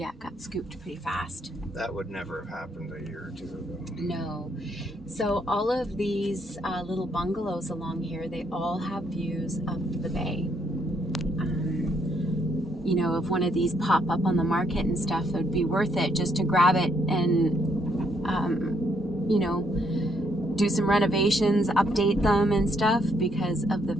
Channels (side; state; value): both; normal; correlation 0.72